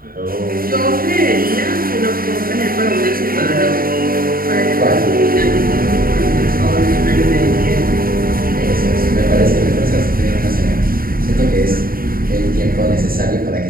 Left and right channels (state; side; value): late; left; 0.42 ms